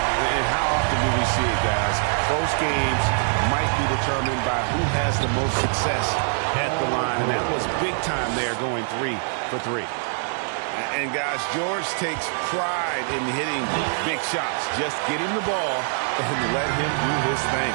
And how often do we see it, guys? Close games might be determined by who has the most success at the line, and that was big time there, going 3 for 3. And, guys, George takes pride in hitting big shots. Just get him the ball and let him do his thing.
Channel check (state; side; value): silent; left; 62 dB below the other